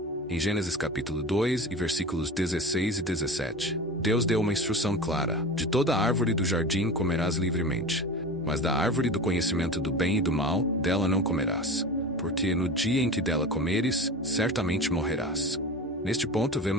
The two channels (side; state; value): both; normal; correlation 0.32